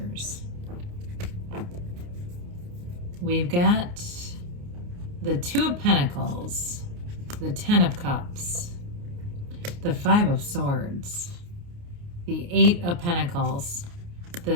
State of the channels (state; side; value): late; left; 29 ms